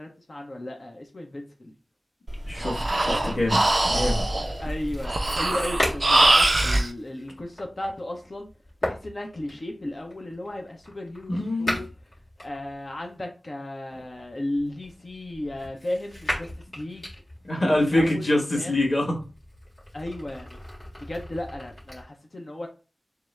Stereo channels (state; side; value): normal; both; correlation 0.96